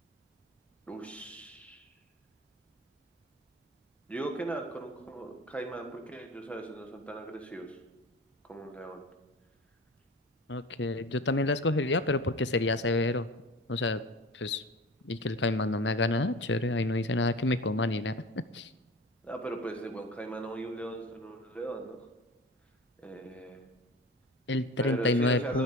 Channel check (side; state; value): both; normal; correlation 0.35